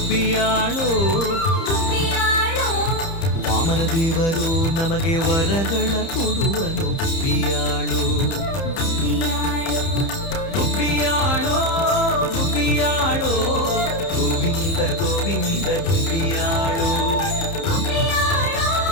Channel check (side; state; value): right; late; 30 ms